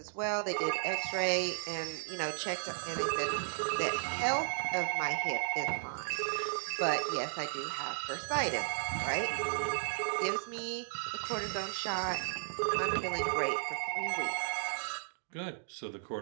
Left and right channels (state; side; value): silent; left; digital silence